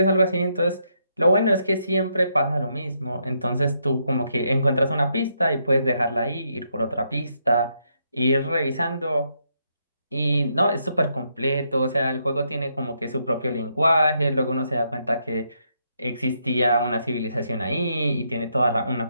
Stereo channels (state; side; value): inverted; both; correlation -0.77